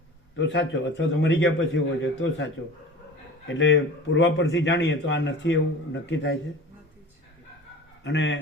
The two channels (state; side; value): normal; both; correlation 0.38